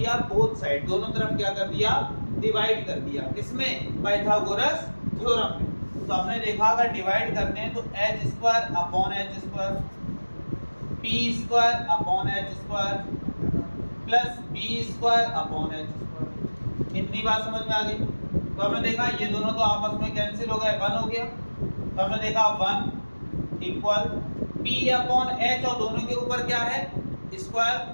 बोथ साइड, दोनों तरफ क्या कर दिया, डिवाइड कर दिया। किसमें? पाइथागोरस थ्योरम में। तो हमने देखा अगर डिवाइड करते हैं तो h square upon h square, p square upon h square plus b square upon h square. इतनी बात समझ में आ गई? तो हमने देखा ये दोनों तो आपस में कैंसिल हो गए, 1 हो गया। तो हमने देखा 1 इक्वल p अपॉन h और दोनों के ऊपर क्या है, स्क्वायर।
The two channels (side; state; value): both; inverted; correlation -1.00